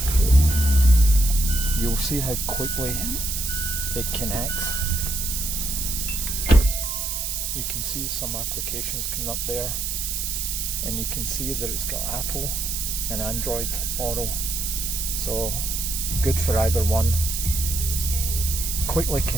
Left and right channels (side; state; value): right; noise; hiss, 2 dB below the sound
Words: you'll see how quickly it connects. You can see some applications coming up there, and you can see that it's got Apple and Android Auto, so good for either one. Quickly